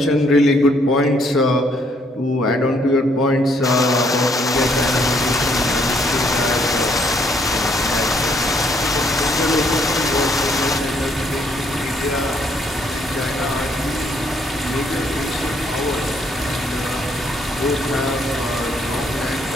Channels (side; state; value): both; normal; correlation 0.69